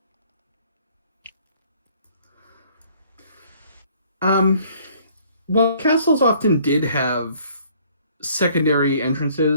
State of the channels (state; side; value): inverted; both; correlation -0.59